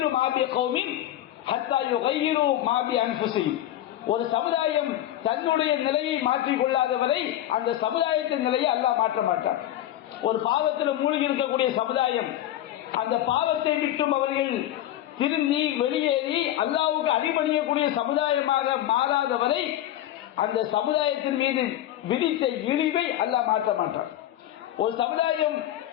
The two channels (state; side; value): quieter; right; 12.9 dB